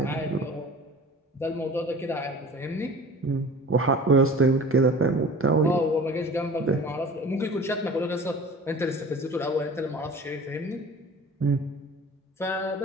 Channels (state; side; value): normal; both; correlation 0.42